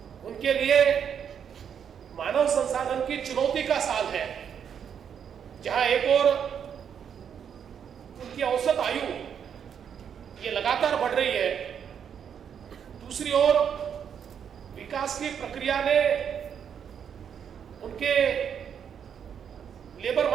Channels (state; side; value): quieter; left; 8.0 dB